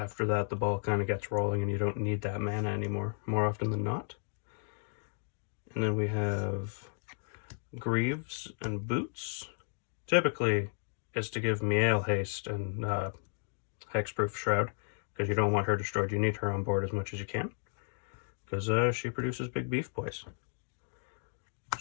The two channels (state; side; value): silent; right; 55 dB below the other